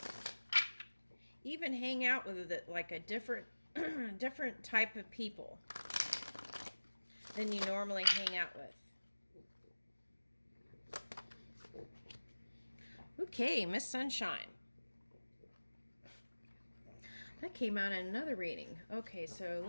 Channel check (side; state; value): both; inverted; correlation -1.00